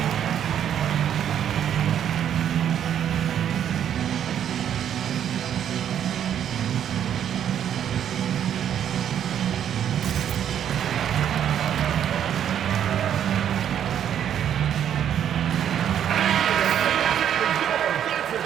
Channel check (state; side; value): quieter; left; 9.6 dB